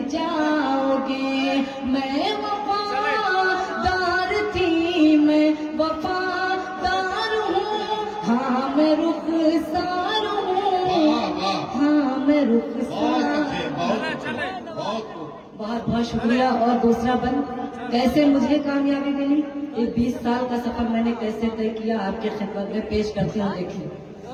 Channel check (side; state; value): both; identical; correlation 1.00